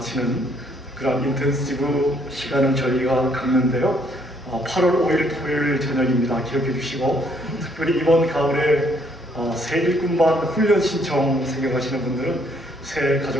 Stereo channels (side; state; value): both; normal; correlation 0.67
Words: 그런 인텐시브 시간을 저희가 갖는데요. 8월 5일 토요일 저녁입니다. 기억해 주시고, 특별히 이번 가을에 새 일꾼반 훈련 신청 생각하시는 분들은 새